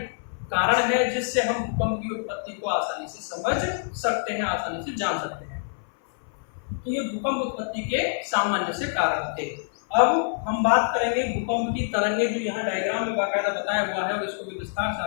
कारण है, जिससे हम भूकंप की उत्पत्ति को आसानी से समझ सकते हैं, आसानी से जान सकते हैं। तो ये भूकंप उत्पत्ति के सामान्य से कारण थे। अब हम बात करेंगे भूकंप की तरंगे, जो यहाँ डायग्राम में बाकायदा बताया हुआ है, और इसको भी विस्तार से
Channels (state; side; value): silent; right; 58 dB below the other